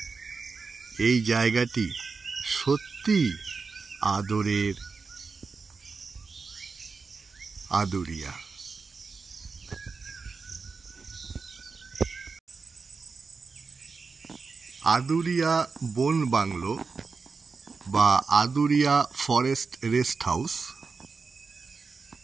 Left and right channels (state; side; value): quieter; left; 4.7 dB